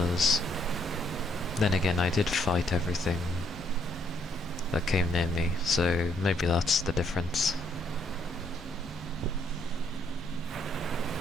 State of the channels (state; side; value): normal; both; correlation 0.71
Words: then again, I did fight everything that came near me, so maybe that's the difference.